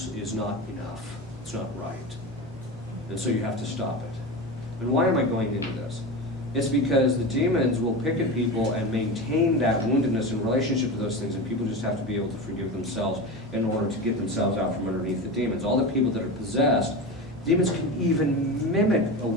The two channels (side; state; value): both; normal; correlation 0.25